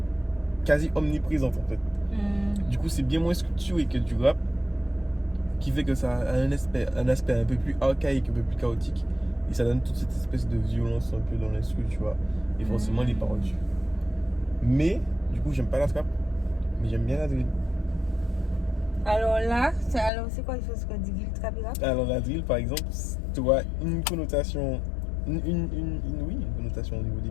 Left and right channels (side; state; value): right; drops out; at 20.1 s